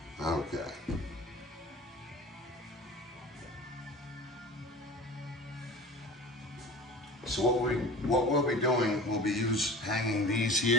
So what we'll be doing, we'll be hanging these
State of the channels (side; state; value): both; normal; correlation 0.38